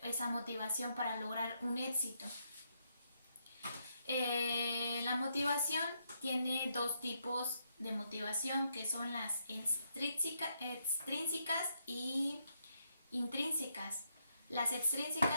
esa motivación para lograr un éxito. La motivación tiene dos tipos de motivación, que son las extrínsecas y intrínsecas. Las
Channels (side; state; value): both; inverted; correlation -0.78